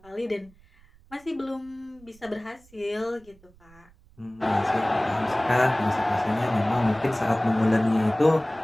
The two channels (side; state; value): right; noise; rumble, 28 dB below the sound